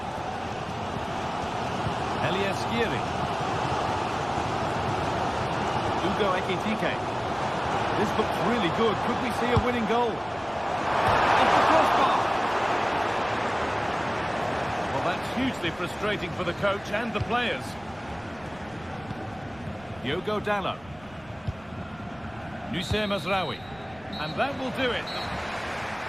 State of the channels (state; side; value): noise; right; rumble, 23 dB below the sound